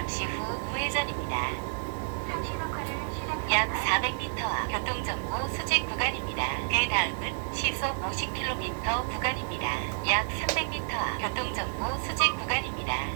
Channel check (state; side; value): silent; left; digital silence